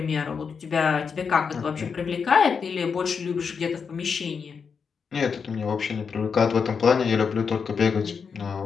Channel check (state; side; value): quieter; right; 6.0 dB